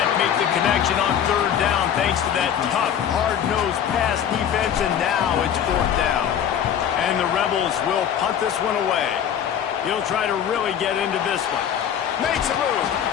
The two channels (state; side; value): quieter; right; 9.1 dB